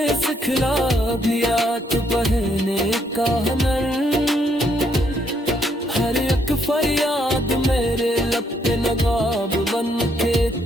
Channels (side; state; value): both; normal; correlation 0.72